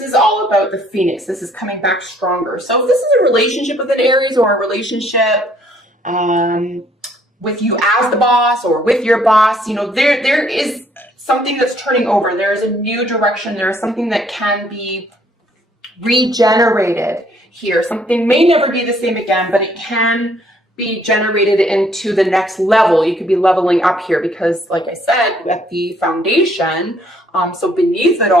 is all about the phoenix. This is coming back stronger. So if this is a relationship with an Aries, or a relationship with you as the boss or with your boss, you know, there is something that's turning over. There is a new direction. There is something that can be regenerated here. Something may never be the same again, but it can be generated into the next level. You could be leveling up here because, like I said, at the foundation, so beneath it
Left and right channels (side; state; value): both; normal; correlation 0.64